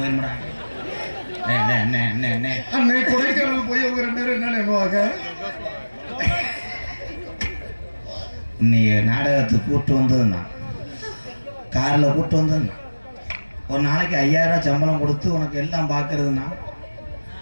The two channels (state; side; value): inverted; both; correlation -1.00